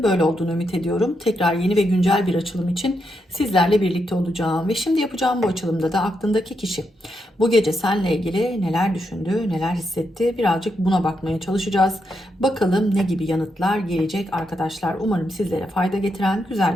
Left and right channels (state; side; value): normal; both; correlation 0.82